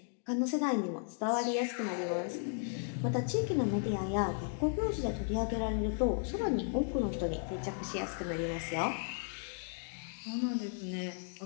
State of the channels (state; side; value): silent; right; 54 dB below the other